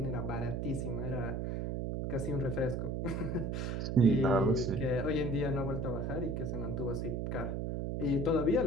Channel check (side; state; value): right; noise; hum, 1 dB below the sound